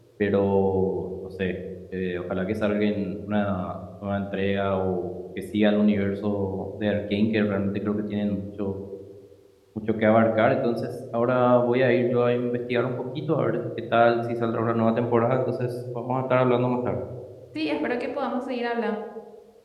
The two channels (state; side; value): identical; both; correlation 1.00